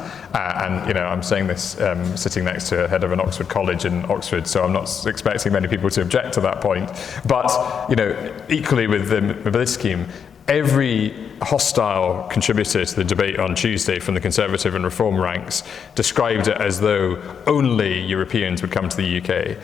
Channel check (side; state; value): right; quieter; 7.1 dB